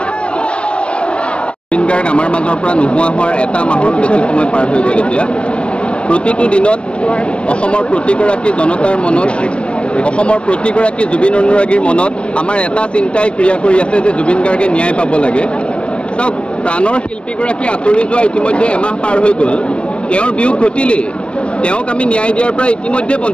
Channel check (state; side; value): late; right; 0.059 ms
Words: জুবিন গাৰ্গ আমাৰ মাজৰ পৰা নোহোৱা হোৱাৰ এটা মাহৰ বেছি সময় পাৰ হৈ গ'ল এতিয়া প্ৰতিটো দিনত অসমৰ প্ৰতিগৰাকী জনতাৰ মনত অসমৰ প্ৰতিগৰাকী জুবিন অনুৰাগীৰ মনত আমাৰ এটা চিন্তাই ক্ৰিয়া কৰি আছে যে জুবিন গাৰ্গে ন্যায় পাব লাগে চাওক প্ৰাণৰ শিল্পীগৰাকী আঁতৰি যোৱা ইতিমধ্যে এমাহ পাৰ হৈ গ'ল তেওঁৰ বিয়োগ ঘটিলেই তেওঁক আমি ন্যায় দিয়াৰ পৰা ইতিমধ্যে